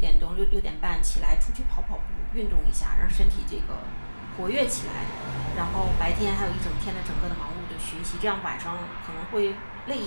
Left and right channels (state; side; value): inverted; both; correlation -1.00